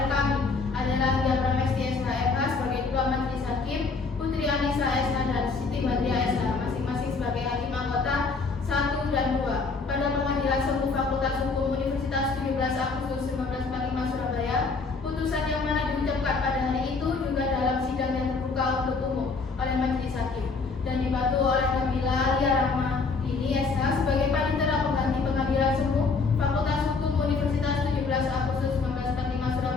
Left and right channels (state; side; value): quieter; right; 4.3 dB